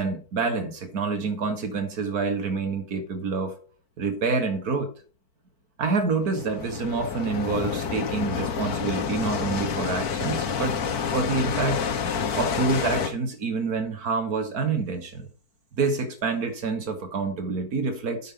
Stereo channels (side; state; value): left; late; 4.5 ms